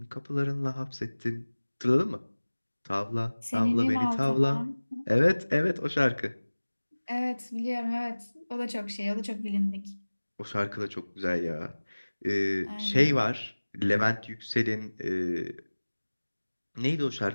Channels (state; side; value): inverted; both; correlation -1.00